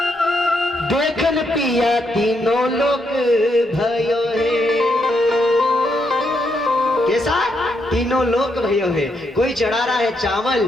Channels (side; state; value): both; normal; correlation 0.78